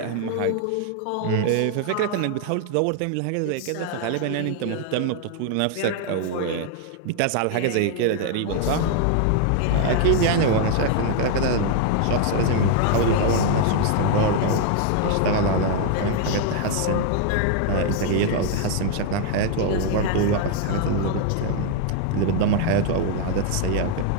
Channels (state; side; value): different; both; correlation 0.00